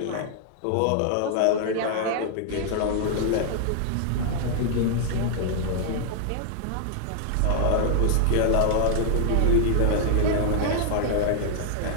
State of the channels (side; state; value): both; different; correlation -0.01